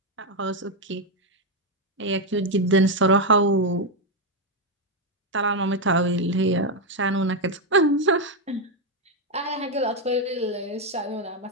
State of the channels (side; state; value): both; normal; correlation 0.05